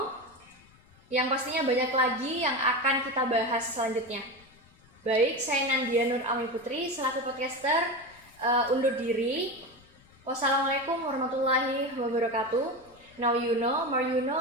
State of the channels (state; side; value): noise; left; rumble, 28 dB below the sound